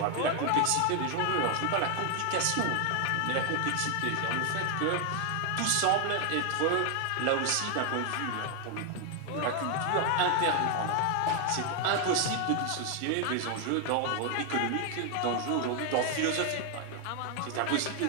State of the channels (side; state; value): both; different; correlation 0.01